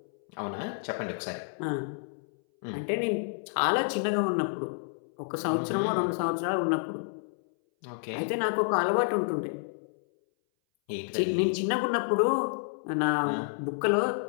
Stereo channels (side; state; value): right; silent; 58 dB below the other